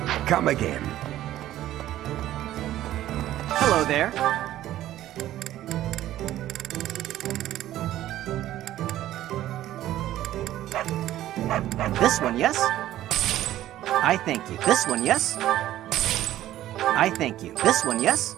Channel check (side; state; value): left; quieter; 13.6 dB